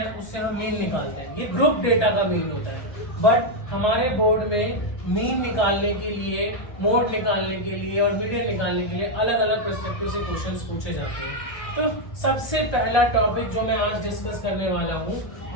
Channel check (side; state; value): right; late; 1.3 ms